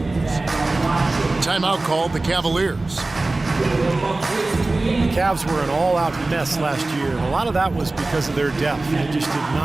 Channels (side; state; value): left; quieter; 3.1 dB